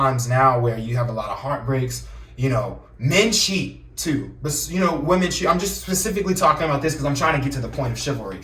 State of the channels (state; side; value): identical; both; correlation 1.00